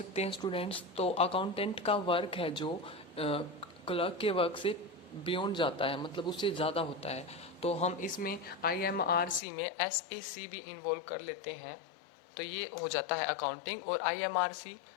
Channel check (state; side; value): drops out; right; at 9.4 s